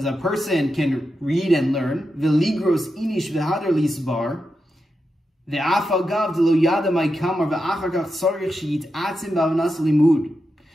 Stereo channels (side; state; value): both; normal; correlation 0.88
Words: a person can read and learn. V'ligros inish v'hadar lisbar. Ve'af agav d'lo yada ma'kamar ve'achar kach tzarich sheyitzim b'avanas limud.